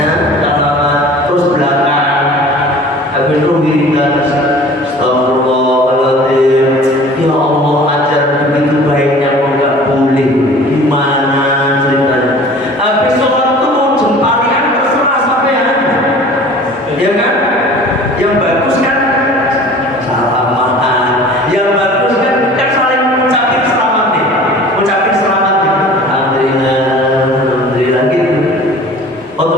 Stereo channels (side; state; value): both; normal; correlation 0.45